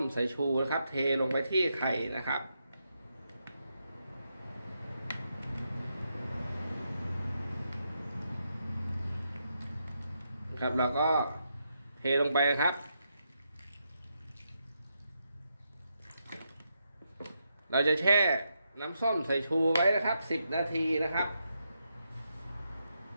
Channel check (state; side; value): inverted; both; correlation -0.83